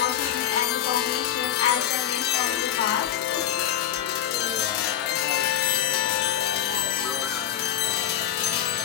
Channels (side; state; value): right; quieter; 10.6 dB